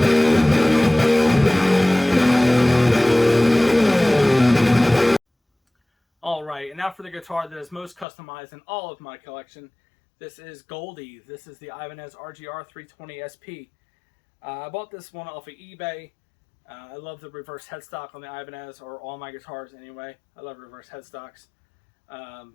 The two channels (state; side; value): drops out; right; at 8.1 s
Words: Alright, and now for the guitar that is most customized in all of my collection. This is Goldie. This is the Ibanez RGR320SP. I bought this one off of eBay. I love the reverse headstock on the Ibanez, or all my guitars anyway. I love reverse headstocks.